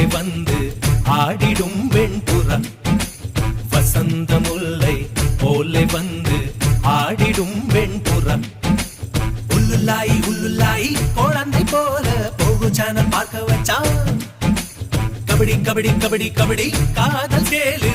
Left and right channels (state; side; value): identical; both; correlation 1.00